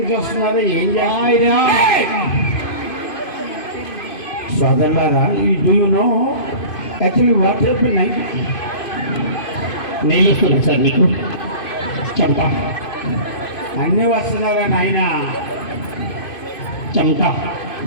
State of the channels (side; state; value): right; late; 2.5 ms